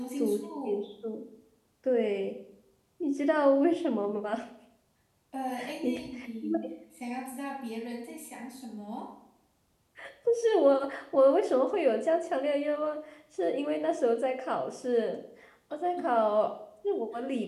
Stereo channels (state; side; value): identical; both; correlation 1.00